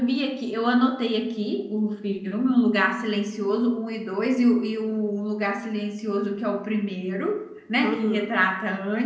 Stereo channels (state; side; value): identical; both; correlation 1.00